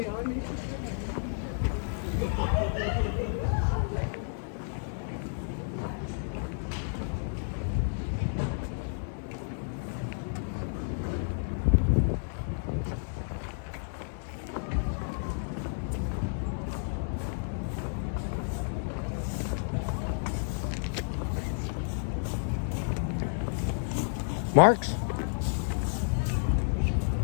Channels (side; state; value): right; silent; digital silence